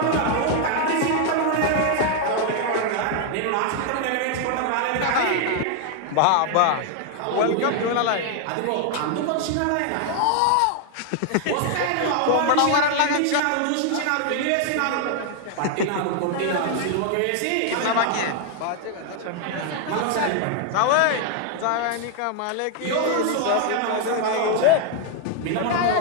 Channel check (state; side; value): different; both; correlation 0.00